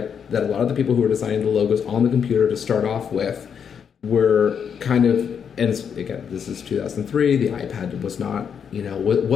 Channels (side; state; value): right; quieter; 7.4 dB